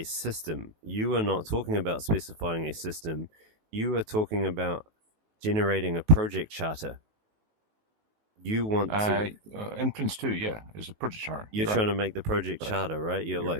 system. You are not talking about specifying a system. You are talking about generating a project charter. You want Uh, to, in Prince 2, yeah, it's a project chart. you're You're right. trying to make the project Right. charter, right? You're Yeah,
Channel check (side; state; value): left; late; 19 ms